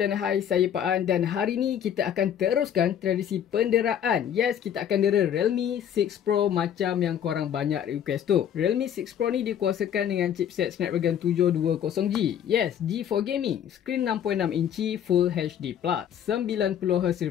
hai, saya Pak An dan hari ni kita akan teruskan tradisi penderaan. Yes, kita akan dera Realme 6 Pro macam yang korang banyak request tu. Realme 6 Pro ni dikuasakan dengan chipset Snapdragon 720G. Yes, G4 Gaming, screen 6.6 inci Full HD+, 90Hz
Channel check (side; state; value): right; quieter; 9.4 dB